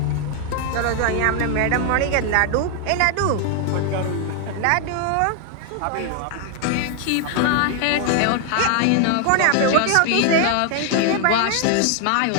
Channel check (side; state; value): both; different; correlation 0.00